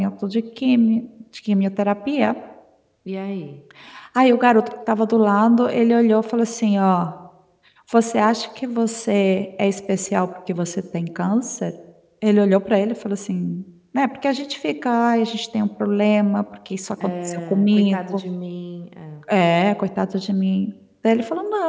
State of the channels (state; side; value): identical; both; correlation 1.00